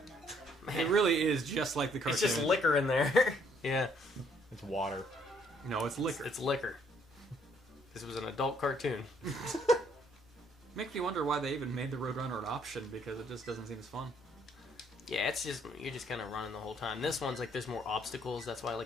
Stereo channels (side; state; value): both; normal; correlation 0.66